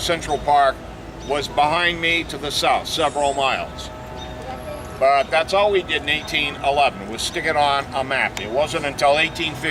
Park was behind me to the south, several miles. But that's all we did in 1811, was stick it on a map. It wasn't until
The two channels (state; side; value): identical; both; correlation 1.00